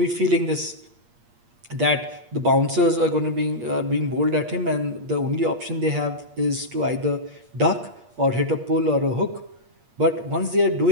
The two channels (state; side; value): late; left; 8.5 ms